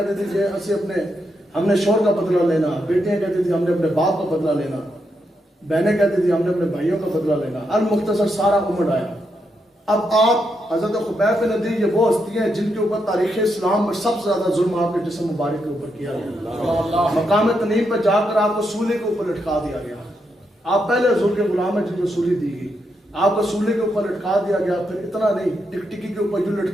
تھی کہ ہم نے شوہر کا بدلہ لینا, بیٹیاں کہتی تھی ہم نے اپنے باپ کا بدلہ لینا. بہنیں کہتی تھی ہم نے اپنے بھائیوں کا بدلہ لینا. المختصر سارا عمر آیا. اب آپ حضرت خبیب بن عدی یہ وہ ہستی ہیں جن کے اوپر تاریخ اسلام میں سب سے زیادہ ظلم آپ کے جسم مبارک کے اوپر کیا گیا. مقام تنعیم پہ جا کر آپ کو سولے کے اوپر لٹکا دیا گیا. آپ پہلے حضور کے غلام ہیں جن کو سولی دی گئی. آپ کو سولے کے اوپر لٹکا دیا گیا. پھر اتنا نہیں, ٹکٹکی کے اوپر یوں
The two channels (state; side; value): normal; both; correlation 0.82